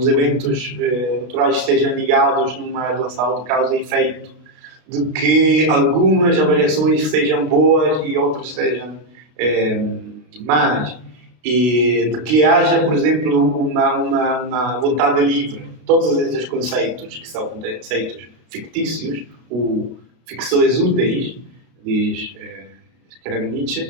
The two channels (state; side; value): late; left; 32 ms